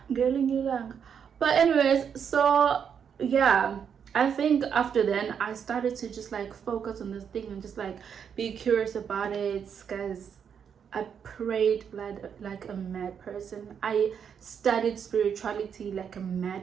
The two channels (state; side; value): quieter; left; 7.5 dB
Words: ngelinye ilanga. But anyways, so yeah, I think after then I started to just like focus on this thing and just like be curious about it, guys. I prayed like a mad person. I studied spirituality like a